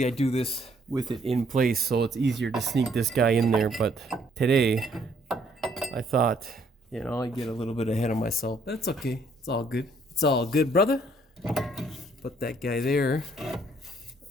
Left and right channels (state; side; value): normal; both; correlation 0.66